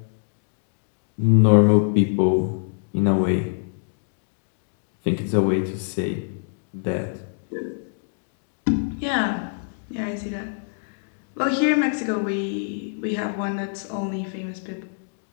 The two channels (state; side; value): silent; right; digital silence